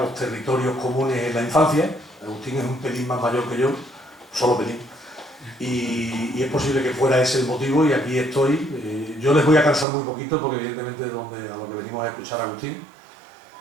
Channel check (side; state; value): left; drops out; at 9.9 s